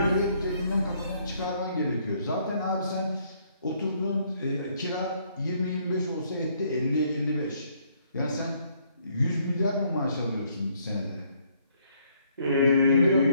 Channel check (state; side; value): inverted; both; correlation -0.68